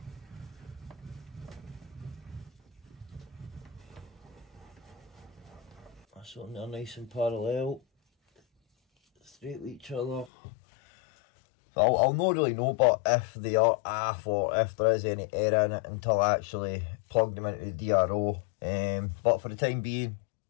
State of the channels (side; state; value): right; drops out; at 10.3 s